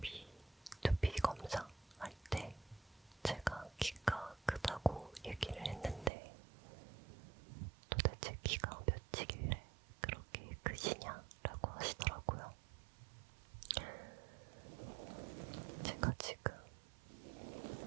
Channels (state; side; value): drops out; left; at 6.1 s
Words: 검사할 때 제가 키가 크다고 얘기를 했는데 도대체 키가 몇이길래 그렇게 크시냐라고 하시더라고요. 제가 지금